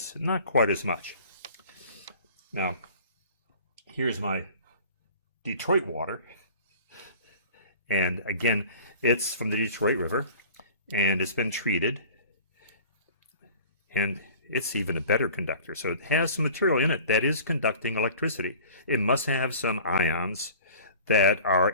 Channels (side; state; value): both; inverted; correlation -0.45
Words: Not quite as much. Now, here's my Detroit water. And again, it's from the Detroit River. And it's been treated, and it's even a better conductor. So it has some material in it that is conducting electricity. It must have some ions that